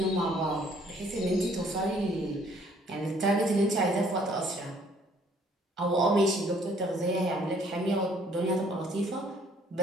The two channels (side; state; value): both; normal; correlation 0.61